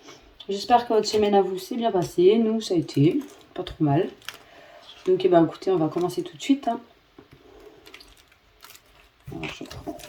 J'espère que votre semaine à vous s'est bien passée. Nous, ça a été pas trop mal. Donc, écoutez, on va commencer tout de suite. Hein. Alors, je prends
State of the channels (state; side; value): identical; both; correlation 1.00